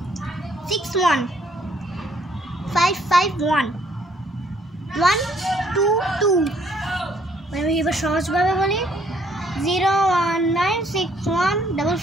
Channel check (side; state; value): both; normal; correlation 0.65